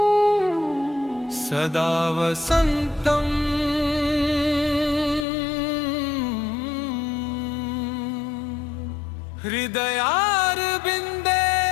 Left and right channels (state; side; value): drops out; right; at 5.2 s